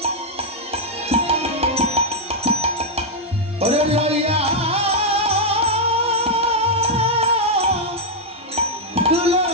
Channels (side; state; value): both; normal; correlation -0.02